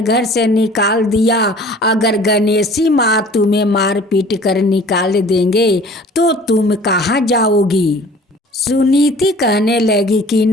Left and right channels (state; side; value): normal; both; correlation 0.48